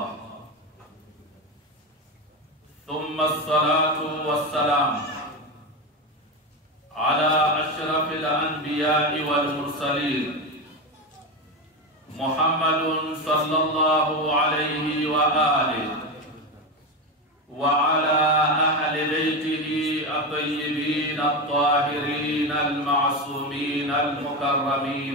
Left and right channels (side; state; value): both; normal; correlation 0.16